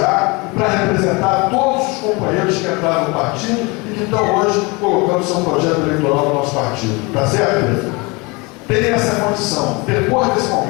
para representar todos os companheiros que entraram no partido e que estão hoje colocando seu projeto eleitoral no nosso partido. Está certo, Pedro? Tem essa condição. Depois desse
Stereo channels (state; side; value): quieter; right; 26.8 dB